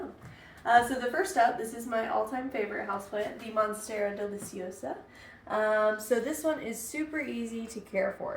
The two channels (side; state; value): both; identical; correlation 1.00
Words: So the first up, this is my all-time favorite houseplant, the Monstera Deliciosa. So this one is super easy to care